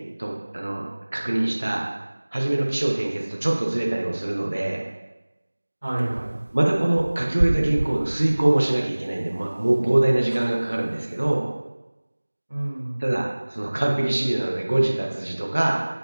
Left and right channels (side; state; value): both; inverted; correlation -1.00